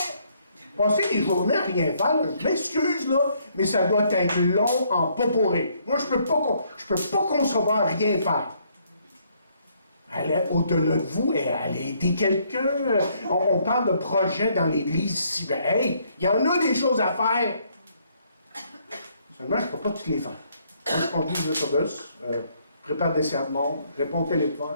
Passez des journées à rien faire, là, je m'excuse, là, mais ça doit être long en poporé. Moi, je peux pas concevoir rien faire. Allez au-delà de vous et allez aider quelqu'un. On parle de projets dans l'Église ici. Ben, hey, il y en a des choses à faire. Seulement, je ne peux pas toutes les faire. Moi, je conduis l'autobus, prépare des sermons, réponds au téléphone,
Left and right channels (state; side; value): inverted; both; correlation -0.69